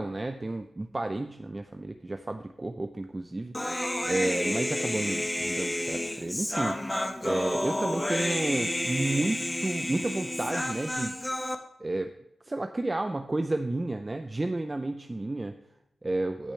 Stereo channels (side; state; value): both; normal; correlation 0.98